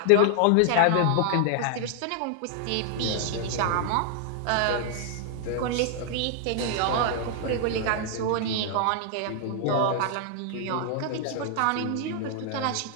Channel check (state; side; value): different; both; correlation 0.00